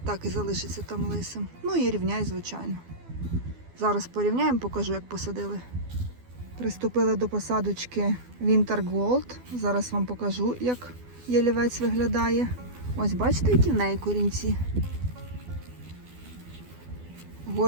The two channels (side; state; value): left; late; 12 ms